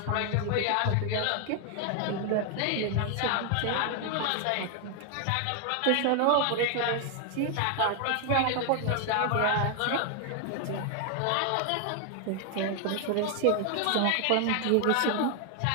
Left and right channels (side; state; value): both; different; correlation 0.00